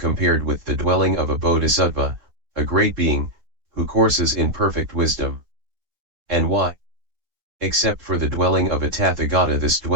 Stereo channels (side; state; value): left; late; 3.7 ms